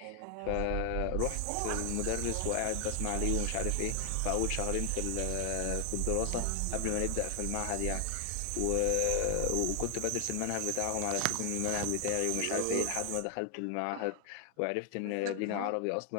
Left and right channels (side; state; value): both; different; correlation 0.00